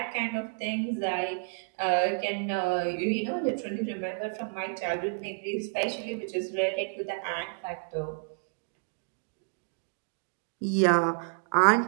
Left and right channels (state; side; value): silent; left; digital silence